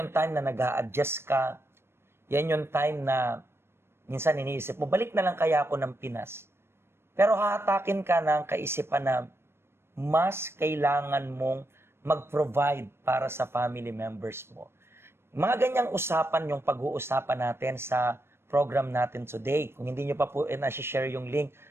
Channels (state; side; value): late; left; 0.12 ms